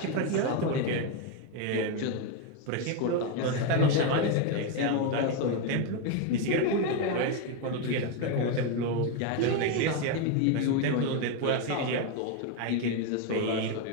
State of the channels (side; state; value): both; different; correlation 0.02